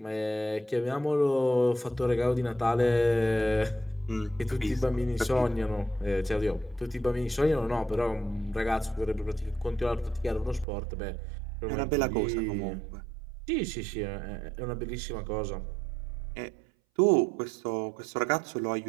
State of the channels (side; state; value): left; drops out; at 10.7 s